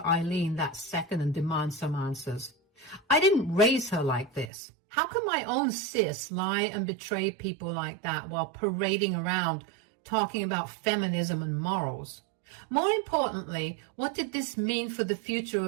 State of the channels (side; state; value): left; drops out; at 4.5 s